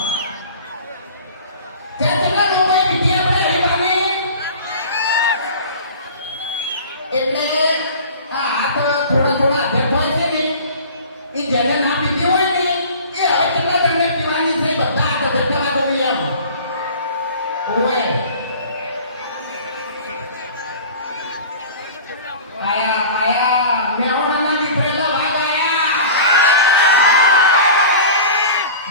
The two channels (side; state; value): both; inverted; correlation -0.40